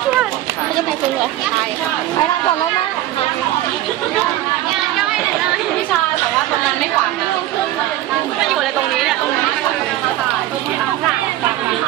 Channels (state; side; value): quieter; left; 14.2 dB